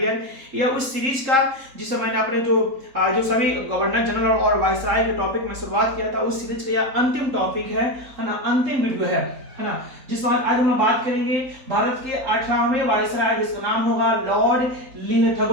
यह उस सीरीज का जिसमें मैंने अपने जो सभी गवर्नर जनरल और वायसराय के टॉपिक में शुरुआत किया था, उस सीरीज का यह अंतिम टॉपिक है ना, अंतिम वीडियो है ना। जिस बात आज हम बात करेंगे भारत के 18वें वायसराय जिसका नाम होगा लॉर्ड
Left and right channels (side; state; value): left; late; 3.9 ms